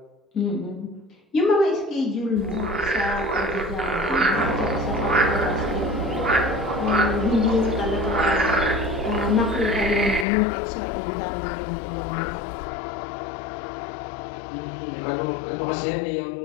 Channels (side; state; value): right; drops out; at 10.2 s